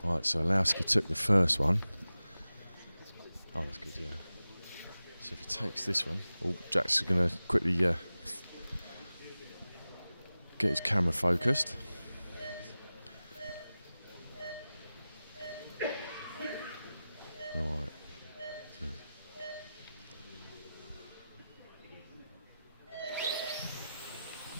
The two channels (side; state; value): both; inverted; correlation -0.95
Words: Right, so Orlowski took the first one. Oh, that's good, yeah. So if he takes this one, Jack's going to quickly get his camera focused. Right.